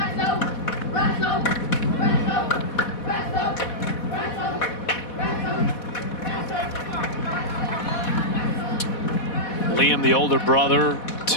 Liam, the older brother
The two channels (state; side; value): late; right; 4.1 ms